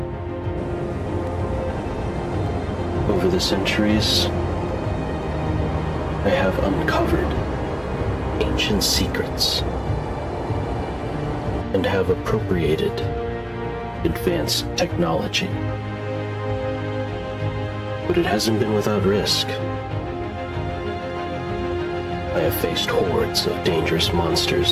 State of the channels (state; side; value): identical; both; correlation 1.00